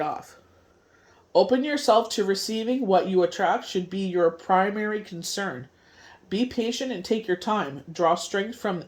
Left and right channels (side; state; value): both; identical; correlation 1.00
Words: off. Open yourself to receiving. What you attract should be your primary concern. Be patient and take your time. Draw strength from